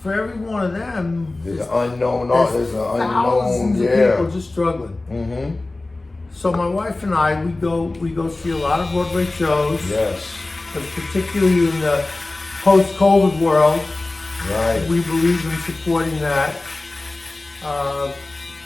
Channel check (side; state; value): right; quieter; 3.0 dB